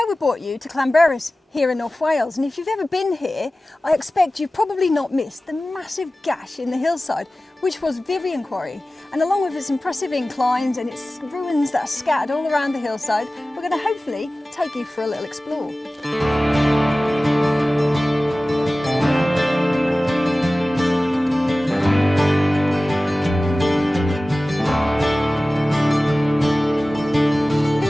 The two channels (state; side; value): normal; both; correlation 0.97